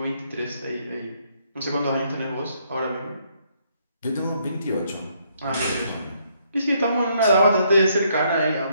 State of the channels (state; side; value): inverted; both; correlation -0.71